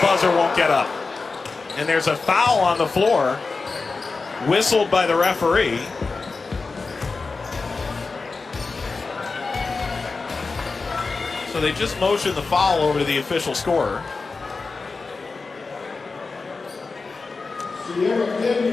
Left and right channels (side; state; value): right; quieter; 4.1 dB